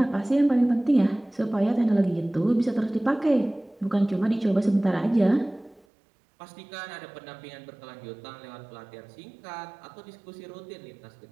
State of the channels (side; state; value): left; drops out; at 5.9 s